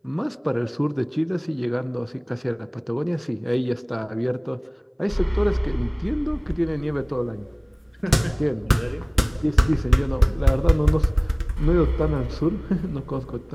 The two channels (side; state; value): both; identical; correlation 1.00